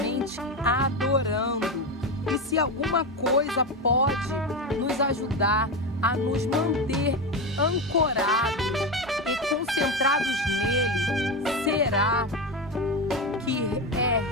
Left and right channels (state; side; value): normal; both; correlation 0.17